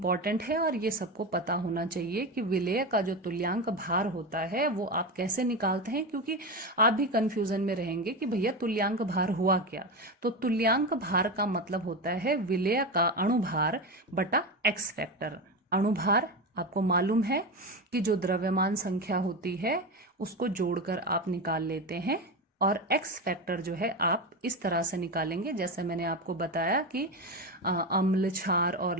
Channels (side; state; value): both; normal; correlation 0.19